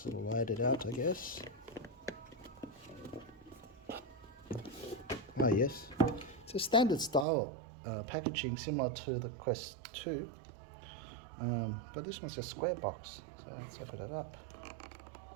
sort of light it out, I guess. Yes, it's a standard style packaging similar to the Quest 2, but this one's a square box, so let's open it up.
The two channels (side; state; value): left; drops out; at 7.2 s